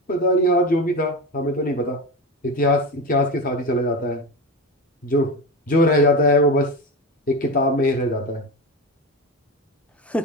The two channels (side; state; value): both; normal; correlation 0.22